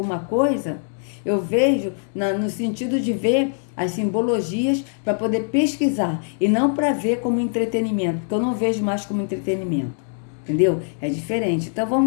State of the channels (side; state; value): right; silent; digital silence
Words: coisa, eu vejo no sentido de ver as simbologias para poder pesquisar e não para ver como entretenimento, porque eu não vejo mais como entretenimento, entendeu? É diferente. Então